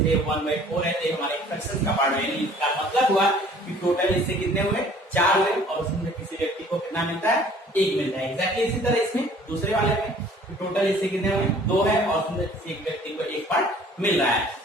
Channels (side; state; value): both; normal; correlation 0.53